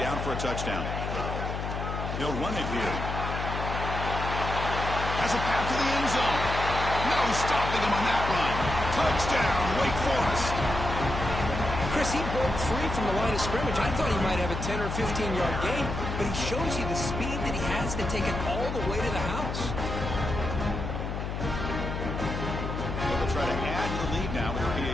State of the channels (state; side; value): noise; left; hum, 4 dB below the sound